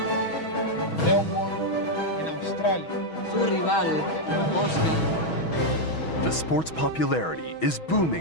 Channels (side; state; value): right; late; 6.2 ms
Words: In Australia. Sul rivale, Oscar. The sport's popularity is